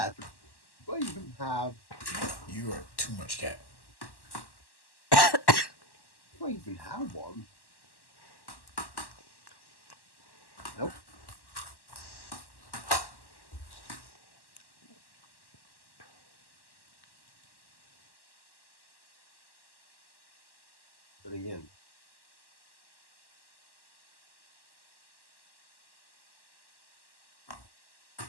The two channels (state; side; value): late; right; 1.1 ms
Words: but do I even have? You are too much cat. Do I even have one? Nope. But again,